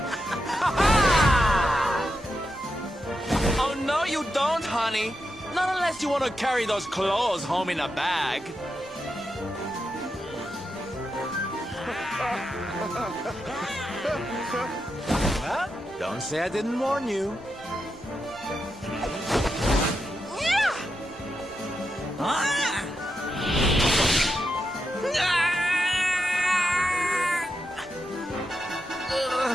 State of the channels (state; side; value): normal; both; correlation 0.86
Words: Oh, no, you don't, honey. Not unless you want to carry those clothes home in a bag. Well, don't say I didn't warn you.